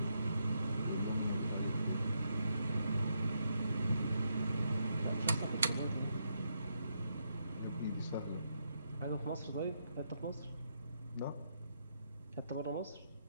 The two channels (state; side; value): inverted; both; correlation -0.80